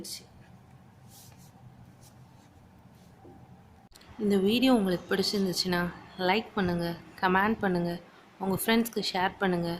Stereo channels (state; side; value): identical; both; correlation 1.00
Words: இந்த வீடியோ உங்களுக்கு பிடிச்சிருந்துச்சுன்னா லைக் பண்ணுங்கள், கமெண்ட் பண்ணுங்கள், உங்கள் ஃப்ரெண்ட்ஸ்க்கு ஷேர் பண்ணுங்கள்,